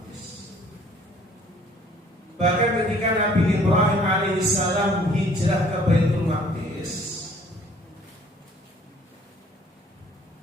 Bahkan ketika Nabi Ibrahim alaihissalam hijrah ke Baitul Maqdis,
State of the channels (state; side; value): normal; both; correlation 0.57